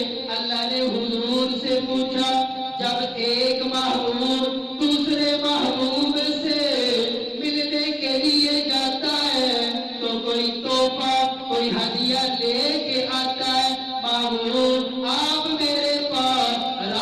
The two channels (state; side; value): identical; both; correlation 1.00